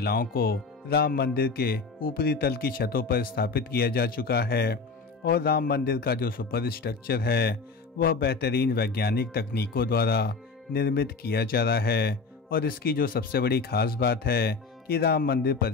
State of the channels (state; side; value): quieter; right; 4.4 dB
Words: को राम मंदिर के ऊपरी तल की छतों पर स्थापित किया जा चुका है और राम मंदिर का जो सुपर स्ट्रक्चर है वह बेहतरीन वैज्ञानिक तकनीकों द्वारा निर्मित किया जा रहा है। और इसकी जो सबसे बड़ी खास बात है कि राम मंदिर